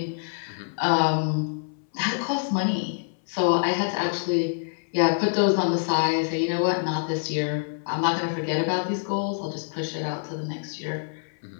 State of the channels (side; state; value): right; silent; 60 dB below the other